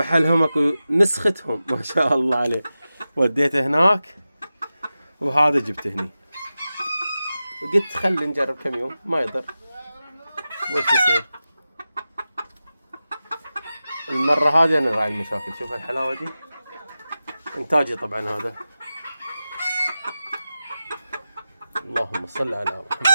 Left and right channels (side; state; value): both; inverted; correlation -0.94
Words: اكو نسختهم ما شاء الله عليه. وديته هناك وهذا جبته هني، قلت خلي نجرب كم يوم ما يضر وش يصير. المرة هذه أنا راعي المشاكل. شوف الحلاوة دي إنتاجي طبعا هذا. اللهم صل على